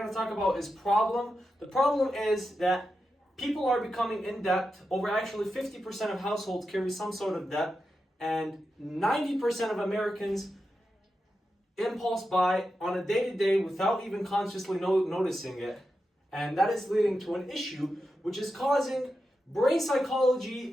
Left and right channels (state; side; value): normal; both; correlation 0.89